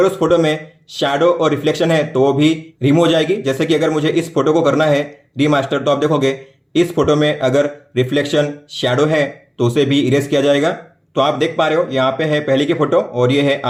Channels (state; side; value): identical; both; correlation 1.00